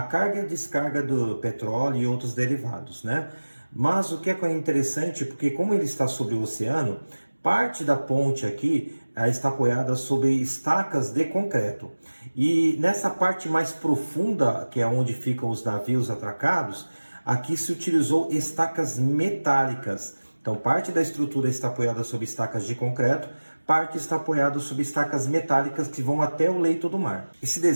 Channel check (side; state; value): both; inverted; correlation -1.00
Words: carga e a descarga do petróleo e outros derivados, né? Mas o que é interessante, porque como ele está sobre o oceano, parte da ponte aqui está apoiada sobre estacas de concreto. E nessa parte mais profunda, que é onde ficam os navios atracados, aqui se utilizou estacas metálicas. Então parte da estrutura está apoiada sobre estacas de concreto, parte está apoiada sobre estacas metálicas que vão até o leito do mar. Esse